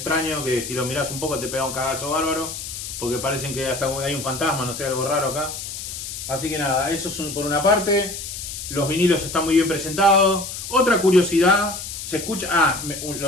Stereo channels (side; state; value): left; noise; hiss, 8 dB below the sound